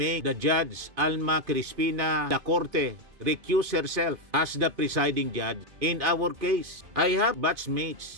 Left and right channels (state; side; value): late; left; 2.5 ms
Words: the Judge Alma Crispina da Corte recuse herself as the presiding judge in our case. I have